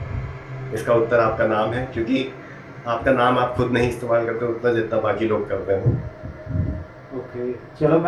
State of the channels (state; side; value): identical; both; correlation 1.00